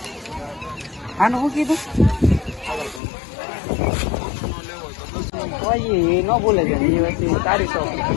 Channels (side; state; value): right; drops out; at 3.0 s